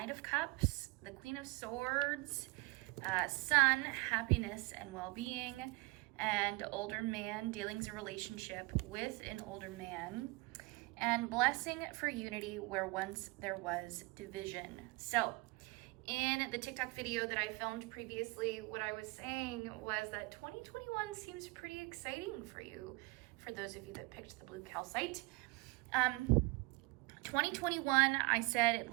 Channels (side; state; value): left; quieter; 25.0 dB